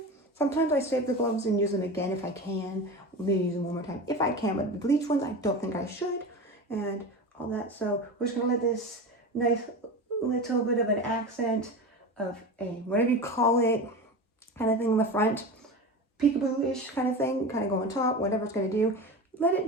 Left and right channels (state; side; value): normal; both; correlation 0.28